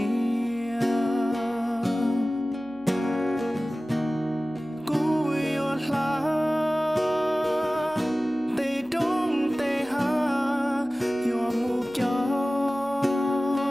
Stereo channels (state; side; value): noise; right; hum, 26 dB below the sound